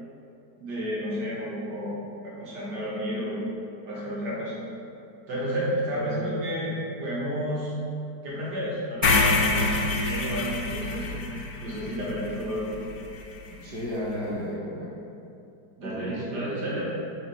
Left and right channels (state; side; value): late; left; 4.5 ms